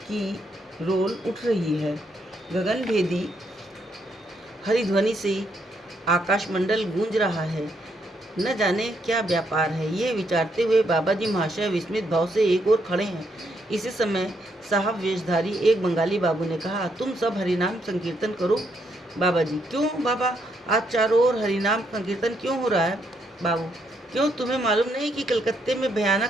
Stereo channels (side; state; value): both; normal; correlation 0.75